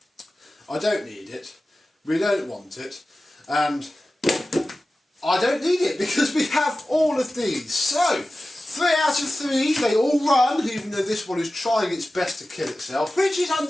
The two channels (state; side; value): normal; both; correlation 0.95